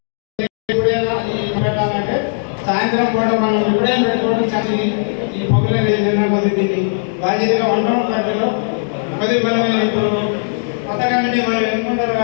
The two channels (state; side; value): silent; right; digital silence